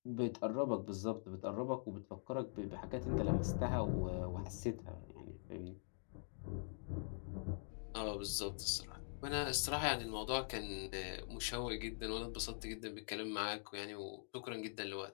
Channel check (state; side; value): silent; right; digital silence